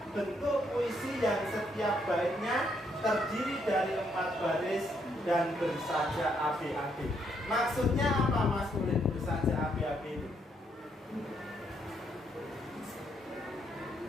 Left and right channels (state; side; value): normal; both; correlation 0.74